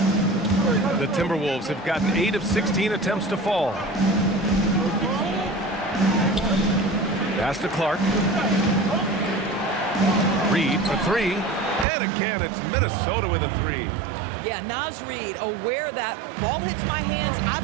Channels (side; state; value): left; drops out; at 11.9 s